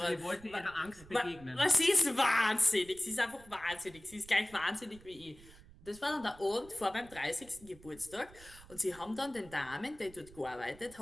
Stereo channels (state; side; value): noise; right; rumble, 21 dB below the sound